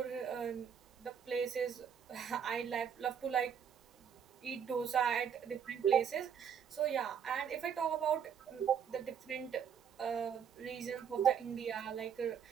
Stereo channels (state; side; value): quieter; left; 7.8 dB